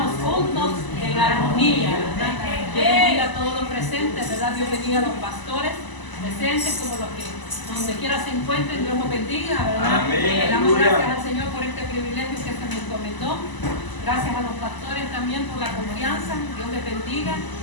juntos en armonía, ¿verdad? Dios bendiga a todos los presentes, ¿verdad? Dios bendiga a los pastores presentes, como los que donde quiera se encuentren, Dios los bendiga, ¿verdad? Amén. Damos gracias al Señor por este privilegio que se me encomendó. Gracias a los pastores también por la confianza. Dios les bendiga.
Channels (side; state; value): right; late; 1.0 ms